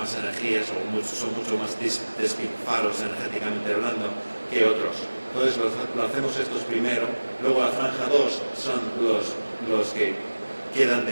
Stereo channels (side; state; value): both; inverted; correlation -1.00